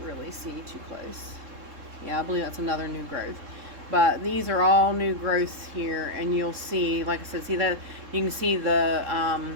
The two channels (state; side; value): late; left; 3.7 ms